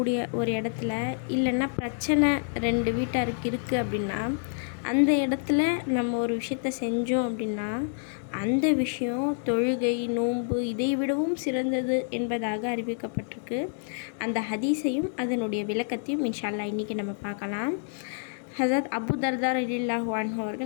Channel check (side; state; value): right; silent; digital silence